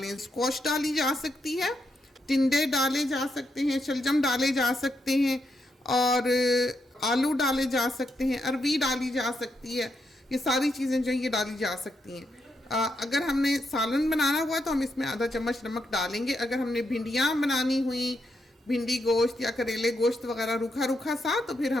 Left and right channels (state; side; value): normal; both; correlation 0.81